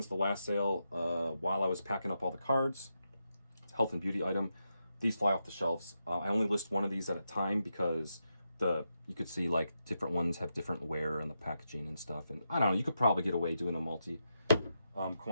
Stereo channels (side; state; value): both; inverted; correlation -0.86